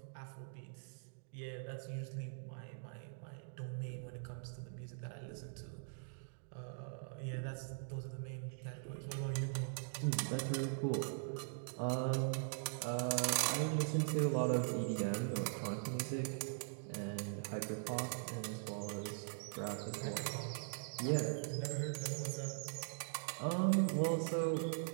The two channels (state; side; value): silent; left; digital silence